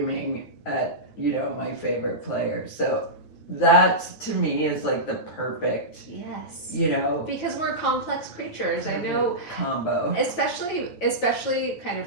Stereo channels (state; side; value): late; right; 9.5 ms